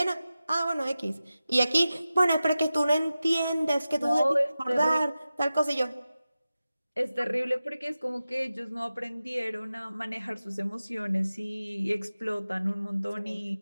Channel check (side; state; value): both; inverted; correlation -0.94